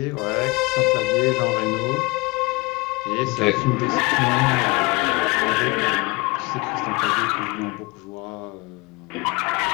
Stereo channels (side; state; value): right; quieter; 24.8 dB